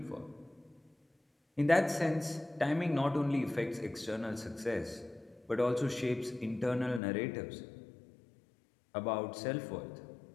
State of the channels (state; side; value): drops out; right; at 7.0 s